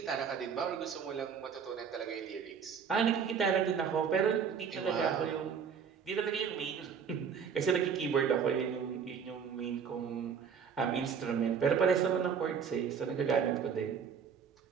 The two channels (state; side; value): quieter; left; 6.8 dB